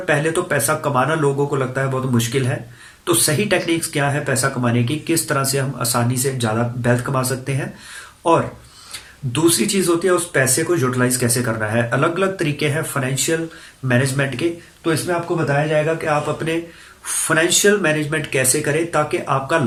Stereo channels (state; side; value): identical; both; correlation 1.00